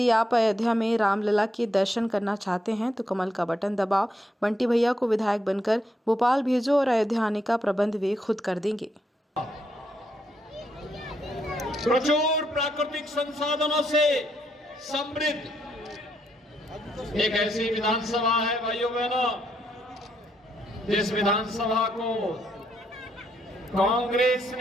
आप अयोध्या में रामलला के दर्शन करना चाहते हैं तो कमल का बटन दबाओ, बंटी भैया को विधायक बनकर भोपाल भेजो और अयोध्या आने का प्रबंध वे खुद कर देंगे। प्रचुर प्राकृतिक संसाधनों से समृद्ध एक ऐसी विधानसभा है भाइयों बहनों, जिस विधानसभा को कांग्रेस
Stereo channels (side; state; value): both; normal; correlation 0.77